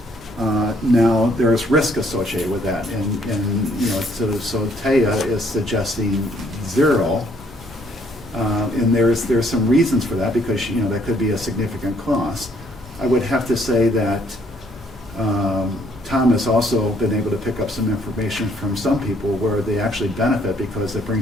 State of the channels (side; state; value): both; normal; correlation 0.66